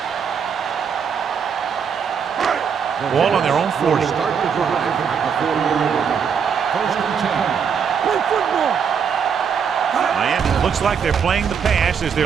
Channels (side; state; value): left; quieter; 6.9 dB